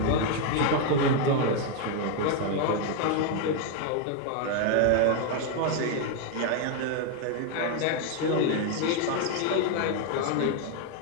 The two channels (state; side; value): different; both; correlation 0.01